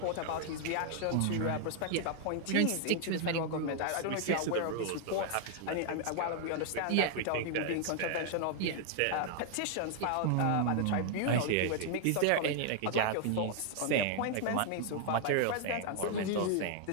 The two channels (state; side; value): different; both; correlation 0.00